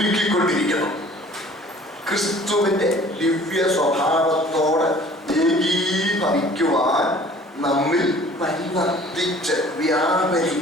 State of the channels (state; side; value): normal; both; correlation 0.50